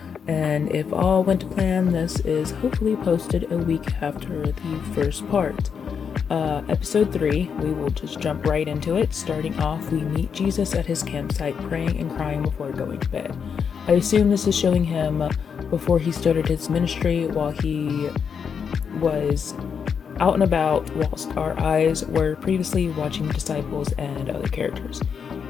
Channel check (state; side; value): quieter; right; 6.7 dB